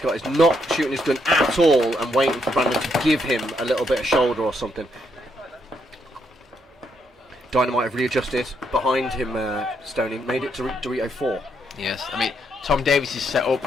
got is not shooting his gun at all and waiting for Brandon to give him a little bit of shoulder or something. Dynamite have readjusted behind him, Stoney, made it to Dorito 4. Yes, I mean, Tom Davies is set up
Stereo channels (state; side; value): normal; both; correlation 0.76